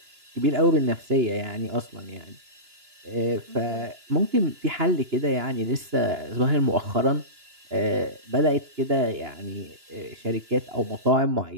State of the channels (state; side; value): late; left; 2.9 ms